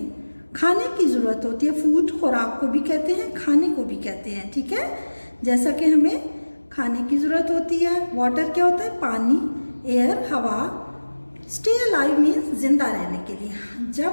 खाने की ज़रूरत होती है, फूड खुराक को भी कहते हैं, खाने को भी कहते हैं। ठीक है। जैसा कि हमें खाने की ज़रूरत होती है। वाटर क्या होता है? पानी। एयर हवा। स्टे अलाइव मीन्स जिंदा रहने के लिए।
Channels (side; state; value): both; inverted; correlation -1.00